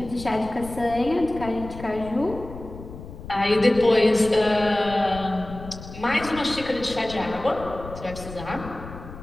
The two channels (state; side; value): noise; left; rumble, 13 dB below the sound